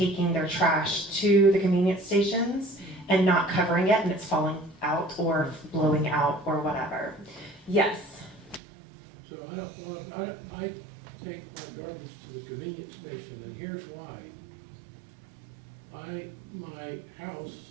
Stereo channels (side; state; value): left; drops out; at 8.6 s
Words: their trash to the convenience stations and not covering it, and it's falling out or blowing out or whatever. Yes. So I take my garbage to the convenience station, and here's why. My house